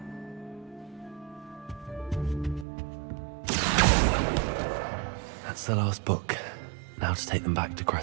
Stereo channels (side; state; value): left; drops out; at 2.7 s